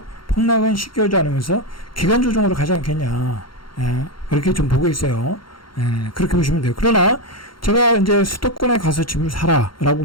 폭락은 쉽게 오지 않으면서 기간 조정으로 가지 않겠냐. 그렇게 좀 보고 있어요. 그렇게 보시면 돼요. 그러나 제가 이제 수도권에 가서 집을 사라라고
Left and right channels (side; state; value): right; late; 0.73 ms